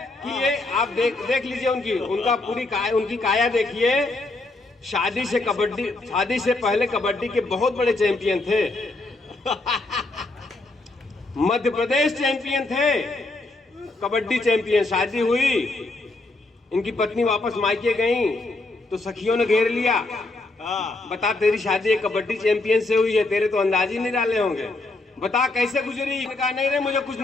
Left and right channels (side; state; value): right; quieter; 3.0 dB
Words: कि ये आप देख लीजिए उनकी काया देखिए। शादी से पहले कबड्डी के बहुत बड़े चैंपियन थे। मध्य प्रदेश चैंपियन थे, कबड्डी चैंपियन। शादी हुई, इनकी पत्नी वापस मायके गई तो सखियों ने घेर लिया। बता तेरी शादी एक कबड्डी चैंपियन से हुई है, तेरे तो अंदाज ही नहीं डाले होंगे, बता कैसे गुजरी? कहा नहीं रे मुझे कुछ